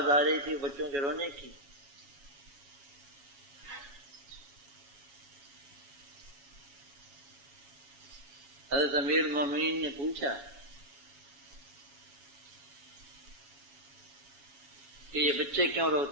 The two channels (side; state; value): left; late; 7.2 ms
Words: آ رہی تھی بچوں کے رونے کی۔ حضرت امیر المومنین نے پوچھا کہ یہ بچے کیوں